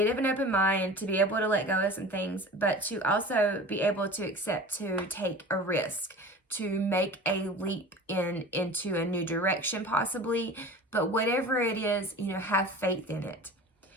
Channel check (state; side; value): normal; both; correlation 0.37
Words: of an open mind, to be able to let go of some things, but to also be able to accept to take a risk, to make a leap into a new direction possibly. But whatever it is, have faith in it.